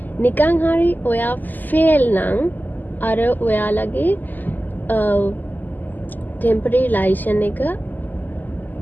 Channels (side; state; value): right; late; 0.086 ms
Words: නිකන් හරි ඔයා fail නම් අර ඔයාලගේ temporary license එක